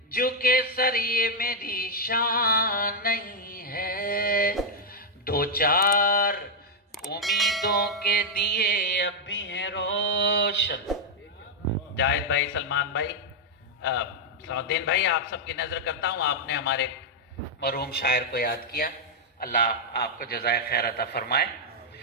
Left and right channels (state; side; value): normal; both; correlation -0.02